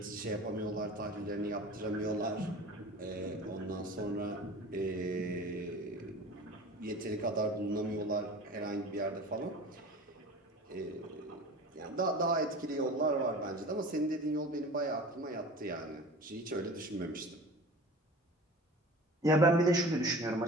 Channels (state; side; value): normal; both; correlation 0.39